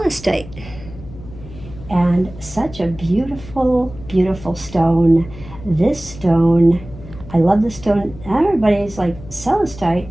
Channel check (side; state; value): left; noise; hum, 16 dB below the sound